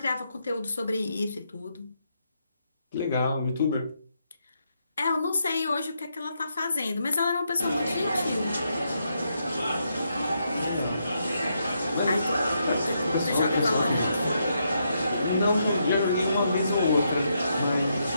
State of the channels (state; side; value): inverted; both; correlation -0.80